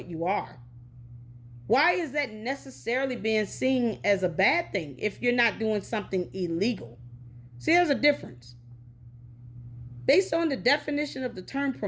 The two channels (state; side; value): identical; both; correlation 1.00